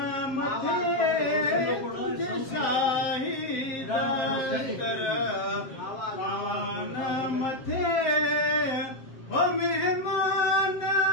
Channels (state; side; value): late; right; 7.5 ms